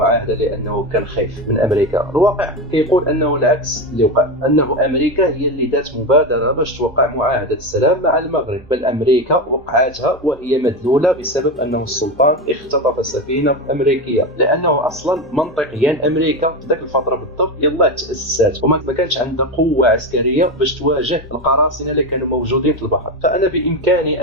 لانه كان خايف من امريكا؟ الواقع كيقول انه العكس اللي وقع، انه امريكا هي اللي دات مبادره باش توقع معاهده السلام مع المغرب، بل امريكا وقعتها وهي مدلوله بسبب انه السلطان اختطف سفينه امريكيه، لانه اصلا منطقيا امريكا في ذاك الفتره بالضبط يلا تاسست وما كانش عندها قوه عسكريه باش تواجه القراصنه اللي كانوا موجودين في البحر. فانا بامكاني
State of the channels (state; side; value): normal; both; correlation 0.17